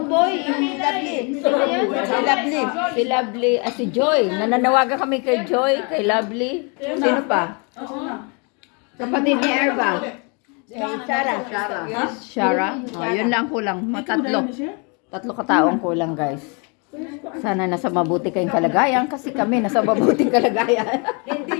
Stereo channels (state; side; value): quieter; right; 33.7 dB